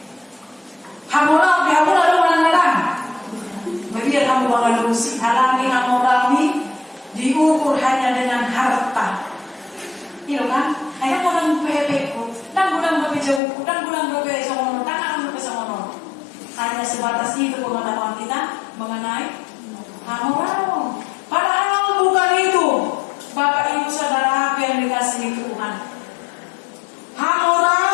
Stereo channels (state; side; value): drops out; right; at 13.4 s